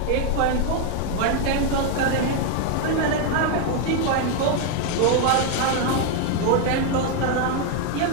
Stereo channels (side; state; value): both; different; correlation 0.01